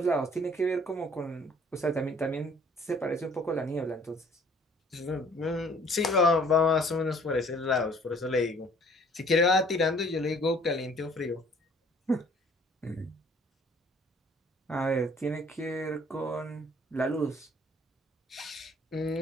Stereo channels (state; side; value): normal; both; correlation 0.56